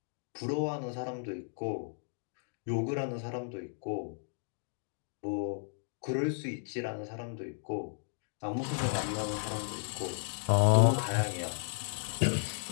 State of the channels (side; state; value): right; silent; digital silence